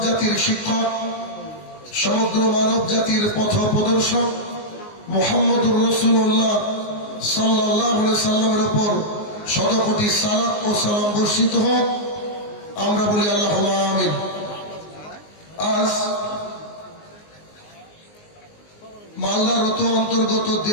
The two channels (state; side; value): late; right; 19 ms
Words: জাতির শিক্ষক, সমগ্র মানব জাতির পথ প্রদর্শক মুহাম্মদুর রাসূলুল্লাহ সাল্লাল্লাহু আলাইহি সাল্লামের উপর শতকোটি সালাত ও সালাম বর্ষিত হোক, আমরা বলি আল্লাহুম্মা আমিন। আজ মালদার অন্তর্গত